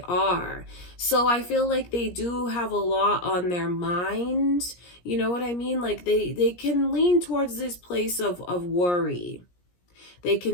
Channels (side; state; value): right; late; 17 ms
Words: are. So I feel like they do have a lot on their mind. You know what I mean? Like they can lean towards this place of worry. They